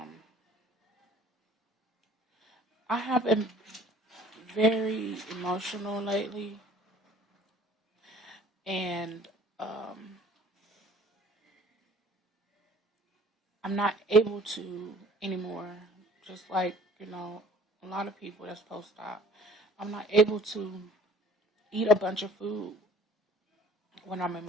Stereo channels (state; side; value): normal; both; correlation 0.52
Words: I have been very emotional lately, and I'm not able to anymore. Just like a lot of people that's post-op, I'm not able to eat a bunch of food when I'm